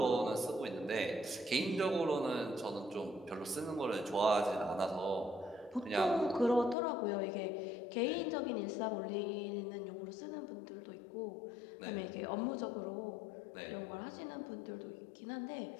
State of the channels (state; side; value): drops out; right; at 6.8 s